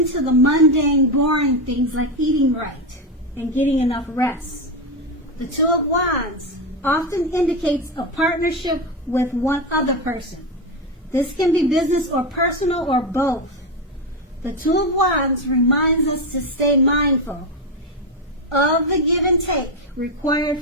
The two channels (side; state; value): both; normal; correlation 0.11